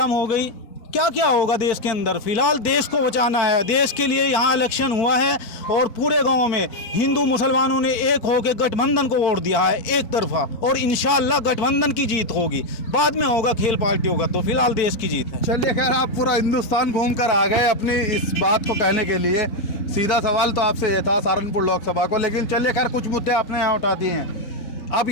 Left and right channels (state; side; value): late; right; 4.5 ms